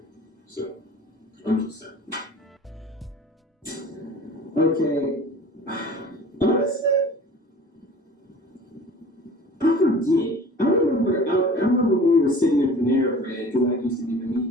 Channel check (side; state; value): both; normal; correlation 0.43